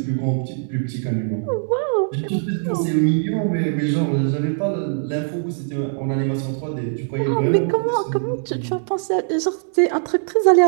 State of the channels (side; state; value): left; silent; digital silence